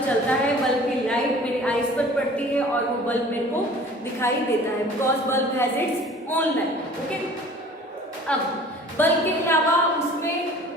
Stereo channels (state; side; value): normal; both; correlation 0.47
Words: चलता है, बल्ब की लाइट मेरी आईज पर पड़ती है और वो बल्ब मेरे को दिखाई देता है because bulb has its own light. Okay, अब बल्ब के अलावा उसमें,